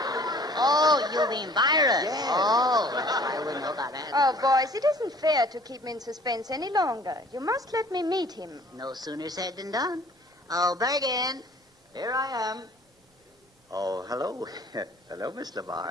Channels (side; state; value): both; normal; correlation 0.52